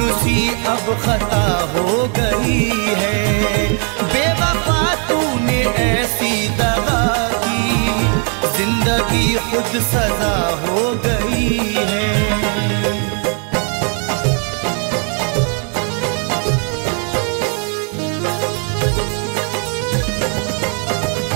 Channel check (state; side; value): quieter; left; 40.0 dB